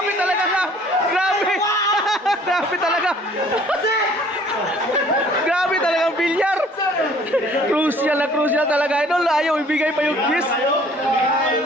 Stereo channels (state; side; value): normal; both; correlation 0.55